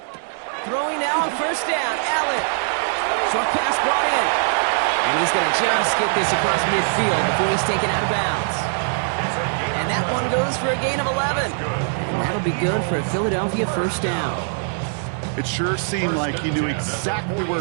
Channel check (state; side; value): silent; left; 64 dB below the other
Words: Throwing now on 1st down, Allen. Short pass brought in. And he's going to just get this across midfield before he's taken out of bounds. And that one goes for a gain of 11. And that'll be good for a Philadelphia 1st down. It sure seemed like he knew exactly where